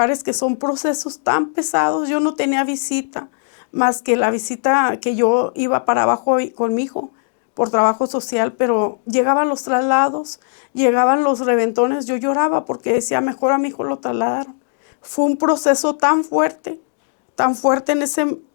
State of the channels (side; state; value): right; silent; digital silence